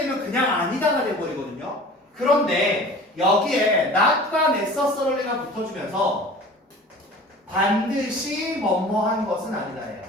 그냥 아니다가 돼버리거든요. 그런데 여기에 not과 necessary가 붙어주면서 반드시 뭐뭐한 것은 아니다예요.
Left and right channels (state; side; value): normal; both; correlation 0.42